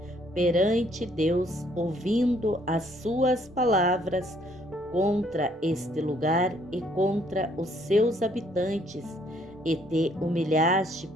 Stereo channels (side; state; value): both; normal; correlation 0.65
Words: perante Deus, ouvindo as suas palavras contra este lugar e contra os seus habitantes, e te humilhaste